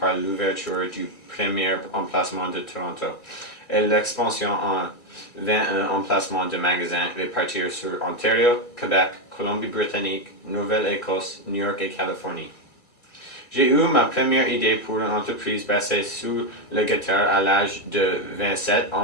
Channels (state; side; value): late; right; 1.7 ms